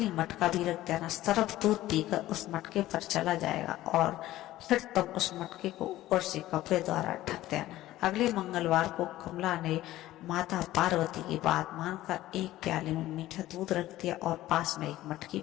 मटका भी रख देना। सर्प दूध पीकर उस मटके पर चला जाएगा और फिर तुम उस मटके को ऊपर से कपड़े द्वारा ढक देना। अगले मंगलवार को कमला ने माता पार्वती की बात मानकर एक प्याले में मीठा दूध रख दिया और पास में एक मटकी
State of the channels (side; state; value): right; quieter; 15.4 dB